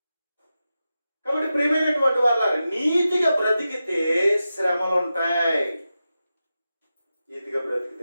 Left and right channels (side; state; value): both; inverted; correlation -0.91